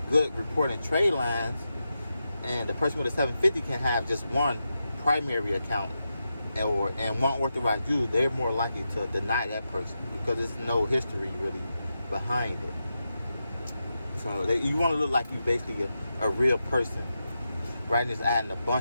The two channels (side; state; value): both; inverted; correlation -0.88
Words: good reporting trade lines, and the person with a 750 can have just one primary account and one authorized user. They're more likely to deny that person because there's no history really behind it. So you want to look like you're basically a real person, rather than just adding a